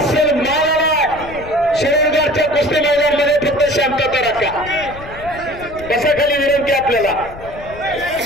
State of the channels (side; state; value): left; noise; rumble, 16 dB below the sound